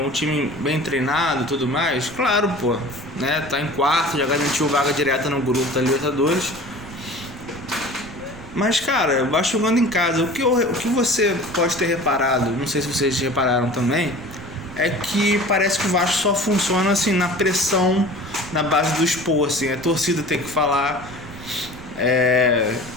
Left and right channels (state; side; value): noise; right; rumble, 17 dB below the sound